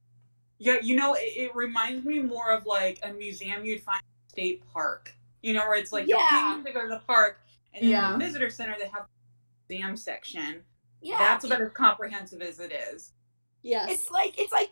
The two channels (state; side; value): inverted; both; correlation -1.00